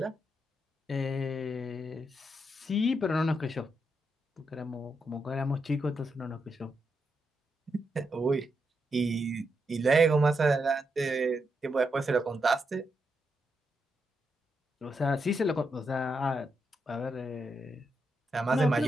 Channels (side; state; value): both; normal; correlation 0.83